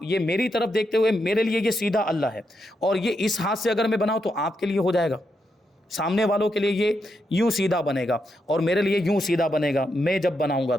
یہ میری طرف دیکھتے ہوئے، میرے لیے یہ سیدھا اللہ ہے، اور یہ اس ہاتھ سے اگر میں بناؤں تو آپ کے لیے ہو جائے گا، سامنے والوں کے لیے یہ یوں سیدھا بنے گا اور میرے لیے یوں سیدھا بنے گا میں جب بناؤں گا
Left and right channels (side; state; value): both; normal; correlation 0.83